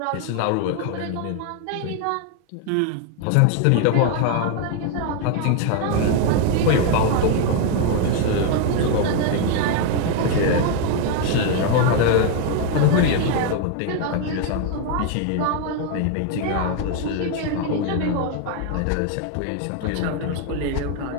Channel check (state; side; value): different; both; correlation 0.01